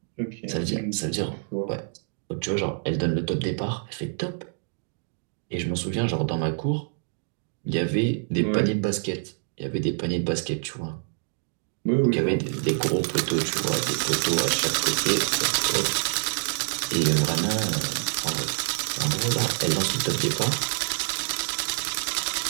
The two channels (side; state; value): left; silent; digital silence